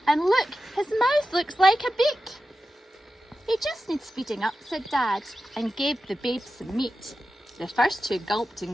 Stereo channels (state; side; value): normal; both; correlation 0.92